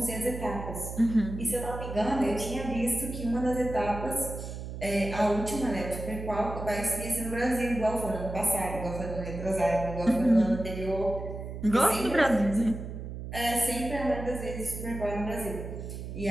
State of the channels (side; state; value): right; noise; hum, 8 dB below the sound